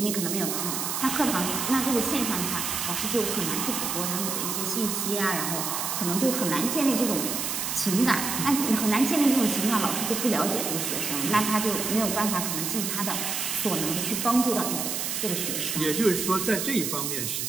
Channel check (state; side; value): noise; right; hiss, 2 dB below the sound